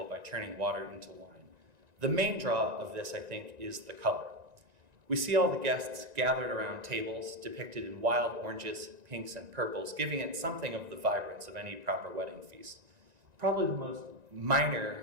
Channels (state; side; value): late; left; 1.9 ms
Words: by turning water into wine. The main draw of this, I think, is the color. We see all the guests gathered around tables depicted in wild oranges, pinks, and purples, giving it something of the vibrance of any proper wedding feast. Probably